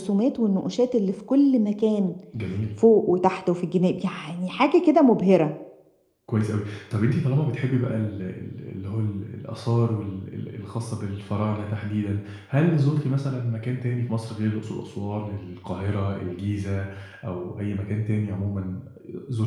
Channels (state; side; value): identical; both; correlation 1.00